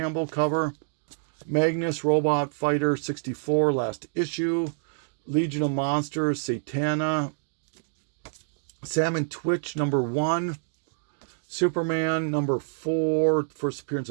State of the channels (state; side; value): silent; left; digital silence